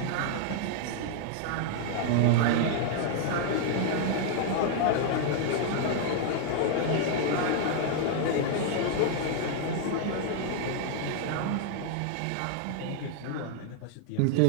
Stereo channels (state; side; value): different; both; correlation 0.00